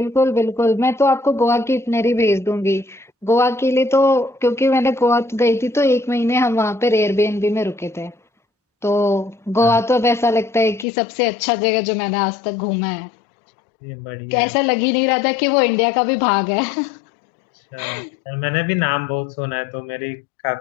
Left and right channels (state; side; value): drops out; right; at 10.9 s